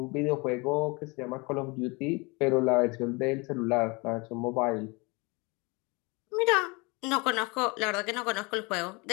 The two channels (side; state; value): right; quieter; 27.5 dB